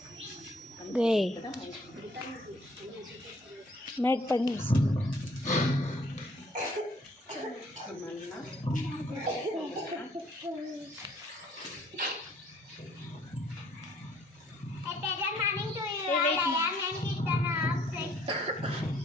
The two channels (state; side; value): normal; both; correlation 0.62